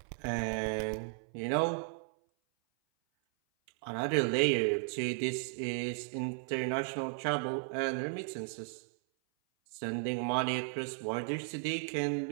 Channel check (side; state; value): left; silent; 55 dB below the other